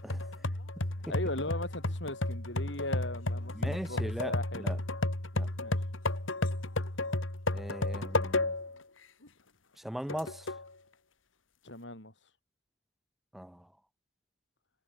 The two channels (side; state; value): both; normal; correlation 0.29